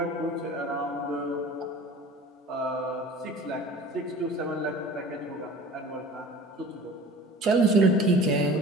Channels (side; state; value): both; normal; correlation 0.42